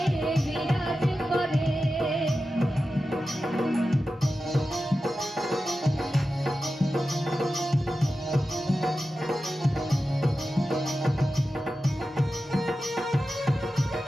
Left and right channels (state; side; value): normal; both; correlation 0.93